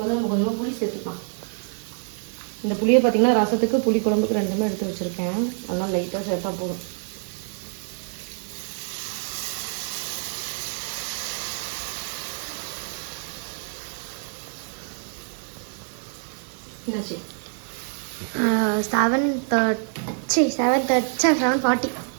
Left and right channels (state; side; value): silent; left; 56 dB below the other